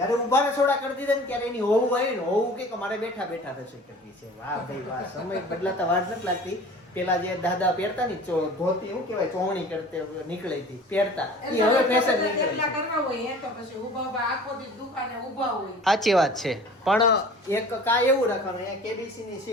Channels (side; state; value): both; normal; correlation 0.44